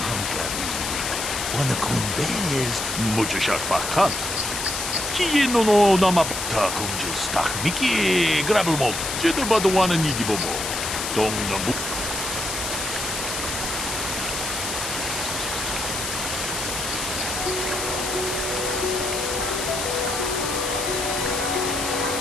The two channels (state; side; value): noise; left; hiss, 4 dB below the sound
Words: hankari, wana kun bez, muchashak bakat. Kieno no namapta kunjus tak miki grabelmo, jedabado wana nidibobo. Dong nabu.